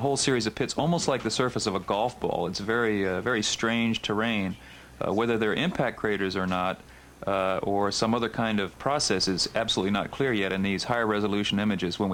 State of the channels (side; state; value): both; identical; correlation 1.00